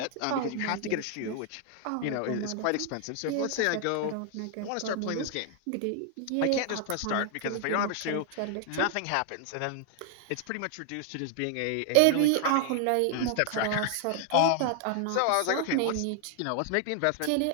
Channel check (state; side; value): different; both; correlation 0.00